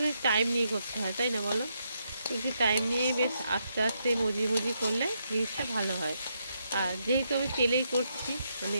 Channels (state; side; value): inverted; both; correlation -0.79